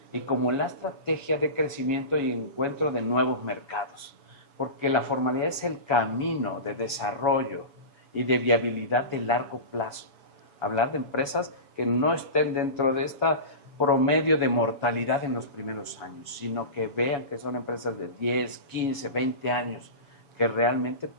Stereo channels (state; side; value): late; right; 7.1 ms